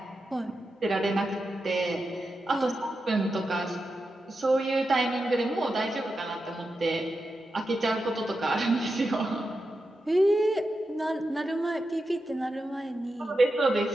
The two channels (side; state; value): both; normal; correlation 0.89